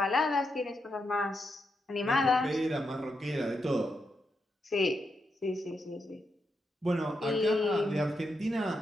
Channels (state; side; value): normal; both; correlation 0.84